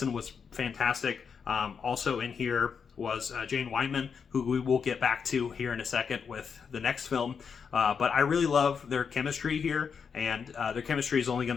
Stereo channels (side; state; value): right; quieter; 6.4 dB